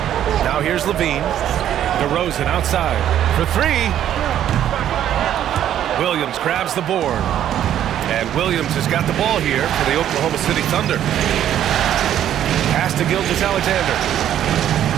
Now here's LaVine. DeRozan outside for 3. Williams grabs the board. And Williams has got the ball here for the Oklahoma City Thunder. Pass to Gilgeous-Alexander.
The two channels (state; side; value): quieter; left; 10.9 dB